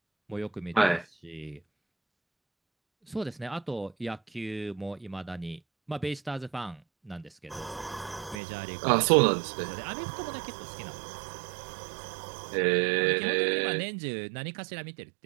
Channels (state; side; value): drops out; left; at 8.4 s